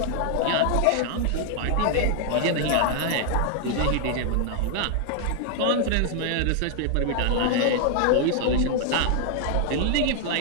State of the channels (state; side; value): different; both; correlation 0.00